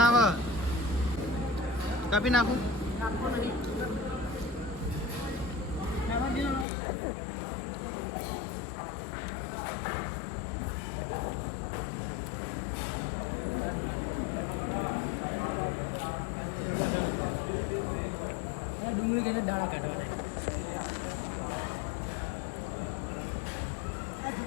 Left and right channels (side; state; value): right; drops out; at 6.7 s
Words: આવે કાપી નાખું. ડુંગળી તેને દાણા કાઢવા